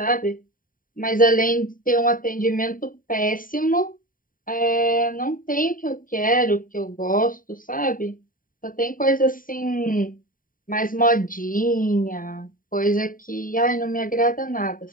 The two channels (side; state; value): right; late; 0.40 ms